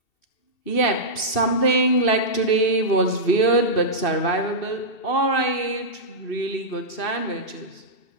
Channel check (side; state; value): right; late; 2.7 ms